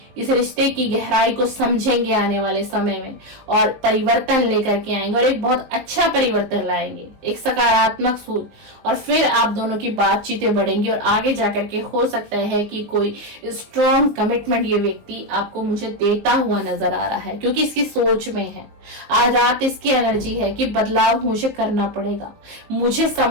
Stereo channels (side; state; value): left; late; 19 ms